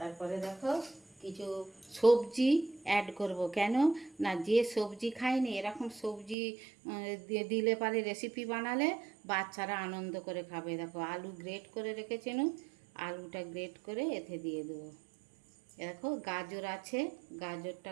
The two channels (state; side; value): drops out; left; at 6.4 s